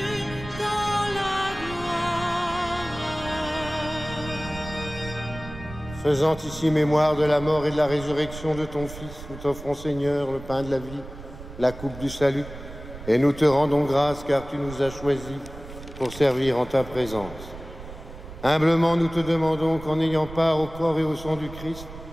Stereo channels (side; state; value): right; noise; rumble, 14 dB below the sound